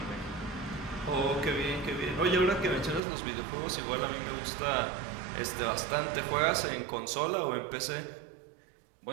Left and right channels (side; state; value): left; drops out; at 3.0 s